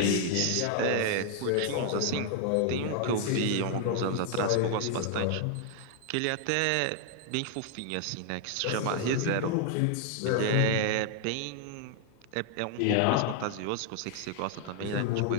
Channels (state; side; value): different; both; correlation 0.00